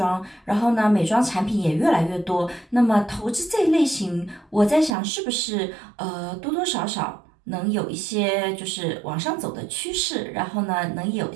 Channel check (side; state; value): left; drops out; at 5.0 s